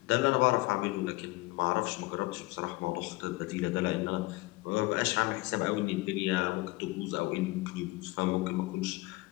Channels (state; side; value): quieter; right; 21.8 dB